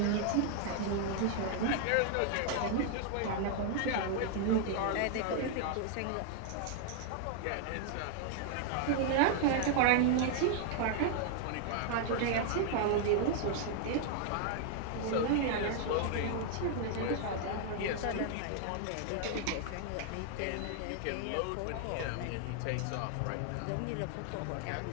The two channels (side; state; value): both; different; correlation 0.00